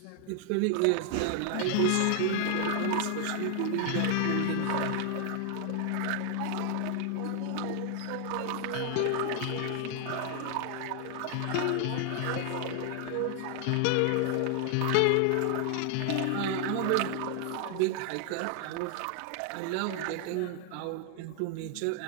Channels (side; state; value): both; different; correlation 0.00